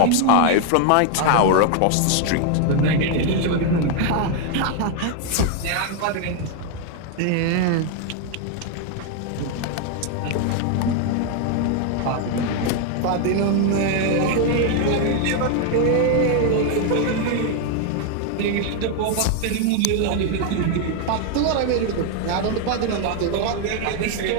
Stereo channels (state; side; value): different; both; correlation 0.01